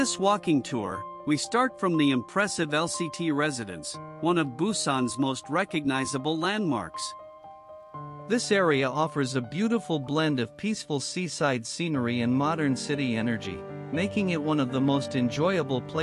walking tour, we start from the impressive LCT Residence, one of Busan's most recognizable landmarks. This area offers a beautiful blend of peaceful seaside scenery and modern city energy, making it one of the most enjoyable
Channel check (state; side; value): identical; both; correlation 1.00